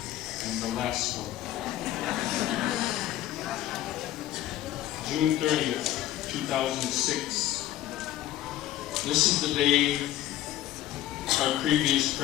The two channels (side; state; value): right; quieter; 13.4 dB